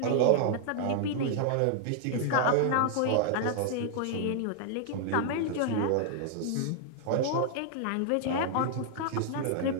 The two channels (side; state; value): both; different; correlation 0.00